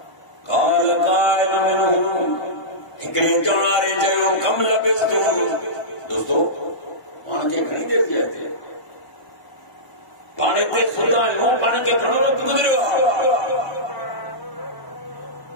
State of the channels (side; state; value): right; late; 1.5 ms